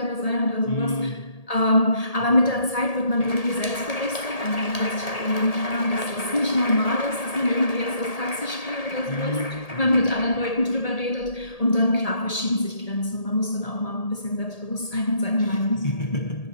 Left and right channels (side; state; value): right; late; 1.8 ms